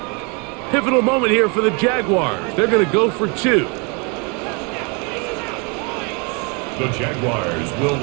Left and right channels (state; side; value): quieter; left; 32.5 dB